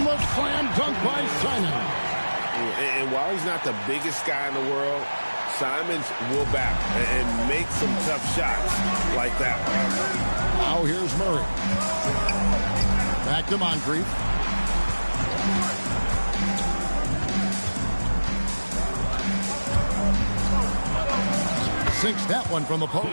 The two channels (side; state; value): both; inverted; correlation -1.00